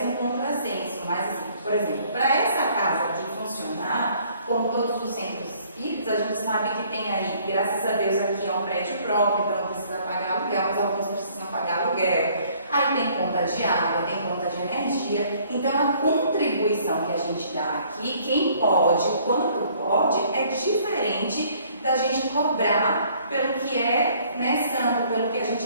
um contrassenso, mas assim, por exemplo, para essa casa aqui funcionar, como todos os centros espíritas, a gente sabe que tem aí, graças a Deus, aqui é um prédio próprio, então não precisa pagar aluguel, mas alguns precisam pagar aluguel. Aí tem conta de água, tem conta de energia. Então a contribuição que a gente dá aqui, quem pode, quanto pode, é diferente da gente cobrar pelo que é, né, santo, pelo que a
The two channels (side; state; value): both; inverted; correlation -0.60